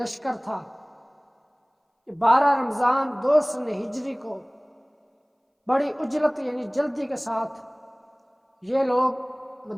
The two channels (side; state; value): both; identical; correlation 1.00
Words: تھا۔ 12 رمضان 2 سن ہجری کو بڑی اجلت یعنی جلدی کے ساتھ یہ لوگ